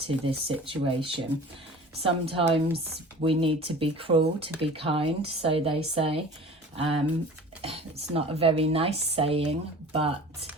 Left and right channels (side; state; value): both; normal; correlation 0.41